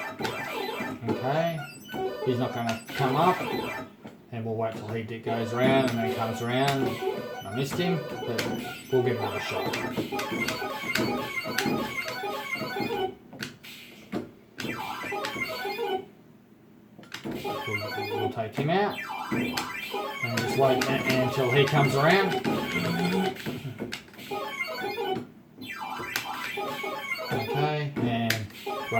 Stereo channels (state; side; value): identical; both; correlation 1.00